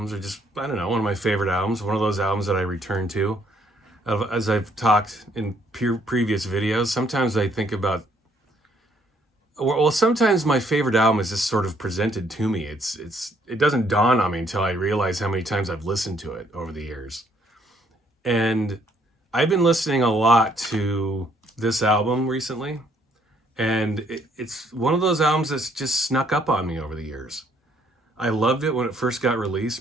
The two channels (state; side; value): normal; both; correlation 0.67